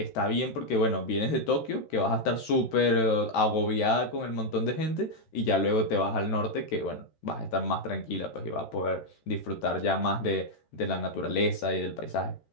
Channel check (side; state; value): right; late; 13 ms